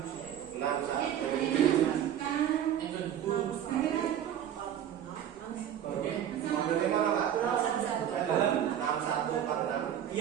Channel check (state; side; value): quieter; left; 10.2 dB